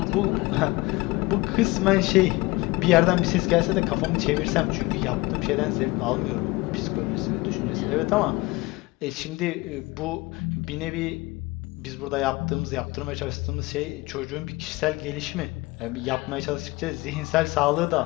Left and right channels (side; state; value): right; quieter; 22.2 dB